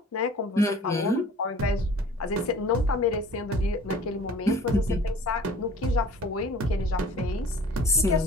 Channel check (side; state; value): both; normal; correlation 0.48